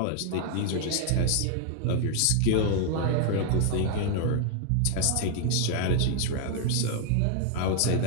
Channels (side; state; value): both; different; correlation -0.01